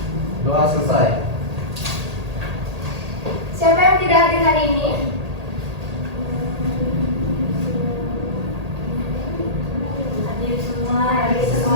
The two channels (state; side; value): late; left; 1.8 ms